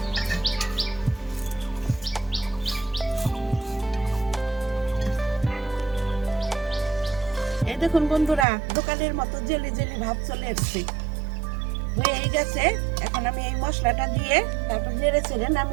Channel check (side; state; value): left; drops out; at 8.5 s